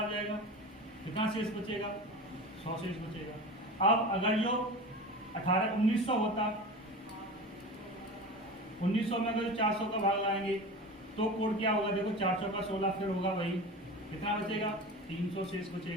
जाएगा, कितना शेष बचेगा, 100 शेष बचेगा। अब अगर जो 1900 होता, 1900 में अगर 400 का भाग लगाएंगे तो कोड क्या होगा, देखो 4 चौका 16, फिर होगा वही, कितना बचेगा, 300 शेष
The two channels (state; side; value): normal; both; correlation 0.31